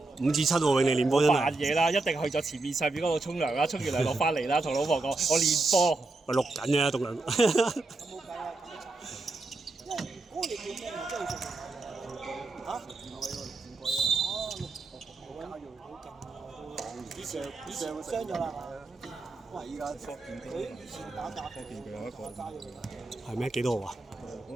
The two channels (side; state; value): left; quieter; 3.3 dB